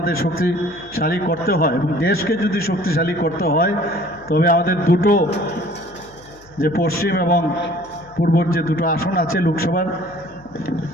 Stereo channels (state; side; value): noise; left; hum, 26 dB below the sound